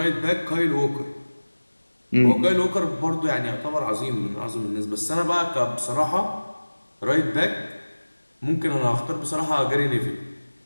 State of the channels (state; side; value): inverted; both; correlation -1.00